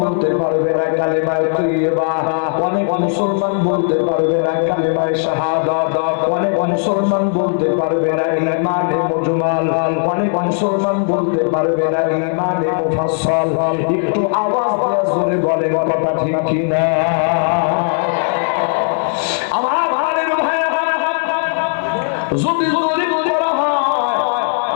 বলতে পারবে না কালিমায়ে তাইয়্যিবা, অনেক মুসলমান বলতে পারবে না কালিমায়ে শাহাদাত, অনেক মুসলমান বলতে পারবে না ঈমানে মুজমাল, অনেক মুসলমান বলতে পারবে না ঈমানে মুফাসসাল। একটু আওয়াজ দিয়ে জোরে বলেন কথা ঠিক কিনা? আমার ভাইয়ের ভাই, যদি জরিপ করা হয়,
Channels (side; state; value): right; silent; digital silence